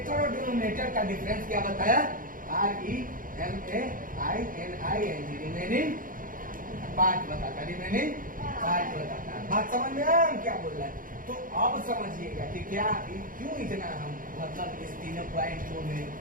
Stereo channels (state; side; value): late; left; 0.40 ms